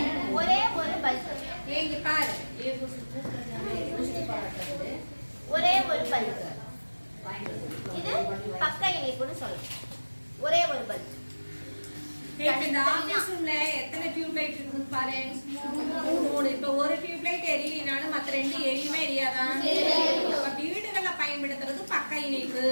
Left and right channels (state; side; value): inverted; both; correlation -1.00